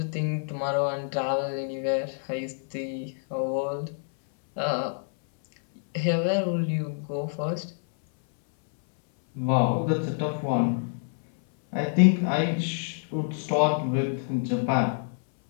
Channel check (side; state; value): right; silent; 60 dB below the other